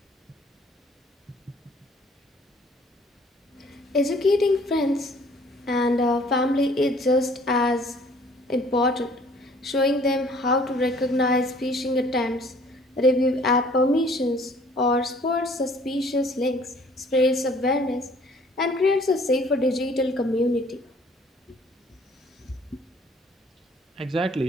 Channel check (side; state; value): both; normal; correlation 0.57